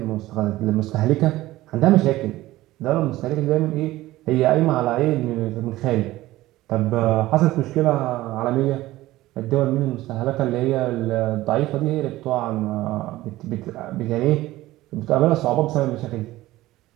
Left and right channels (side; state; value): left; quieter; 16.9 dB